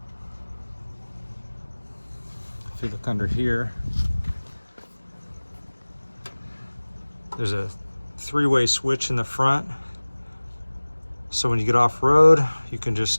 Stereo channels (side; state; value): both; inverted; correlation -1.00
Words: If you look under here, there's a three-way switch in the front, so when you get off road you can